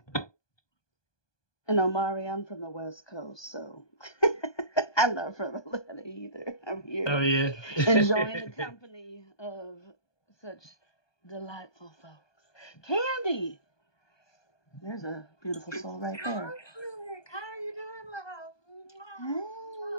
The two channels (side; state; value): right; late; 1.2 ms